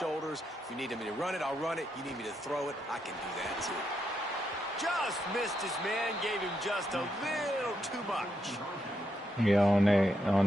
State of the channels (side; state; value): both; normal; correlation 0.81